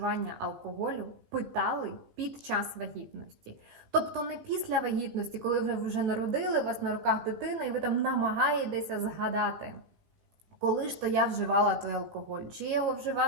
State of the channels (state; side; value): late; left; 17 ms